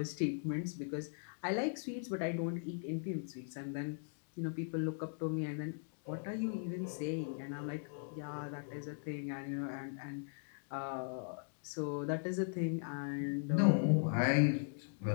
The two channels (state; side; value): silent; right; digital silence